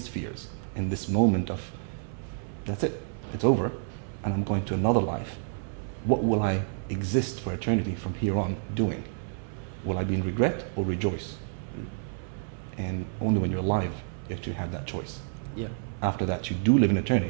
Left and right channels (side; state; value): left; silent; 59 dB below the other